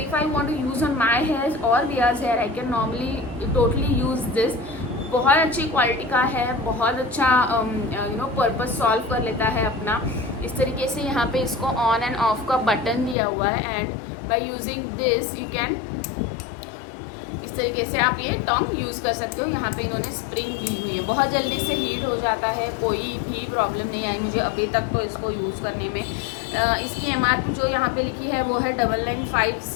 I want to use on my hair और wigs hair I can normally totally use this. बहुत अच्छी क्वालिटी का है, बहुत अच्छा पर्पस सॉल्व कर लेता है अपना। इस तरीके से यहाँ पे इसको ऑन एंड ऑफ का बटन दिया हुआ है and by using this you can तरीके से आप ये टोंग यूज़ कर सकते हो। यहाँ पे इन्होंने स्प्रिंग दी हुई है, बहुत जल्दी से हीट हो जाता है, कोई भी प्रॉब्लम नहीं आई मुझे अभी तक तो इसको यूज़ करने में। इसकी MRP जो यहाँ पे लिखी है वो है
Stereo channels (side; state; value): right; drops out; at 13.2 s